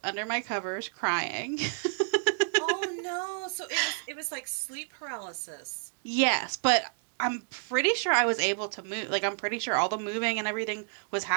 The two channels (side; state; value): left; silent; 58 dB below the other